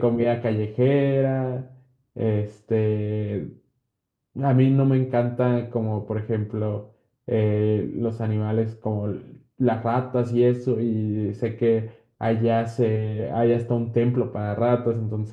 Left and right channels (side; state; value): both; identical; correlation 1.00